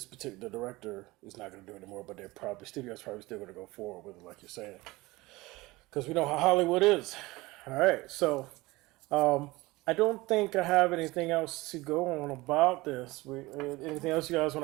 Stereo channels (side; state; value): left; quieter; 21.0 dB